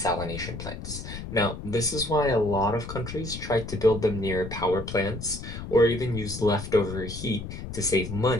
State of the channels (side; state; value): left; noise; rumble, 9 dB below the sound